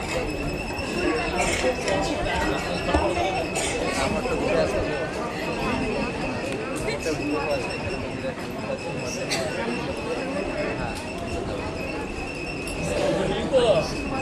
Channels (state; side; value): identical; both; correlation 1.00